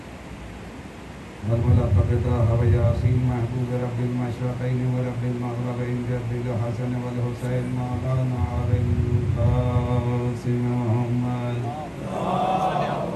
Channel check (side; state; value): both; identical; correlation 1.00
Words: والملقب طه وياسين محبوب رب المشرقين ورب المغربين رب الحسن والحسين مولانا أبي القاسم محمد